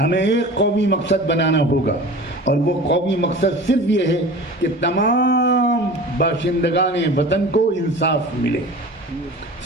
ایک قومی مقصد بنانا ہوگا، اور وہ قومی مقصد صرف یہ ہے کہ تمام باشندگان وطن کو انصاف ملے،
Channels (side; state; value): both; normal; correlation 0.38